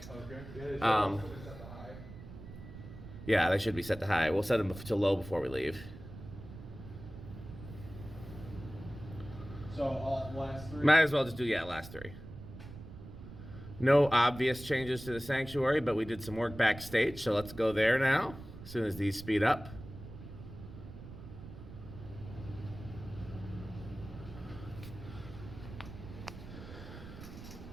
Okay. Yeah, they should be set to high. We'll set them to low before we leave. So all last 3. Might as well just do, last 3. No obvious changes to the sanctuary, but we did some work backstage, so let's go there now, as soon as these speed up.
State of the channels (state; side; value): noise; right; rumble, 13 dB below the sound